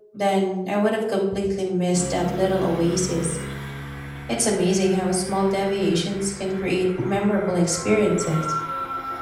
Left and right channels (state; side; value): identical; both; correlation 1.00